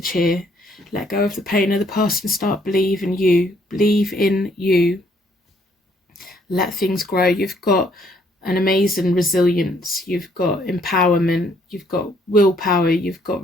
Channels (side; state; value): both; normal; correlation 0.67